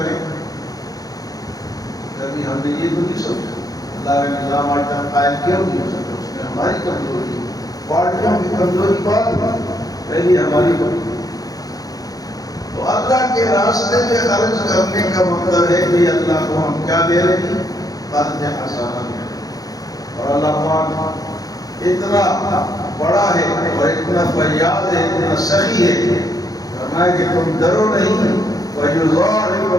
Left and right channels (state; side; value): late; right; 0.18 ms